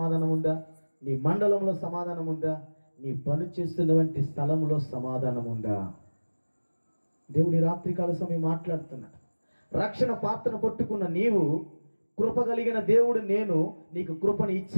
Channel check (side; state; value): both; inverted; correlation -1.00